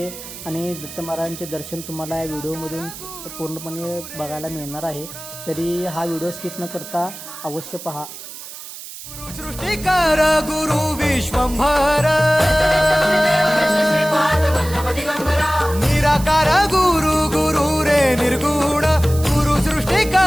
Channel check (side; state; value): right; noise; hiss, 13 dB below the sound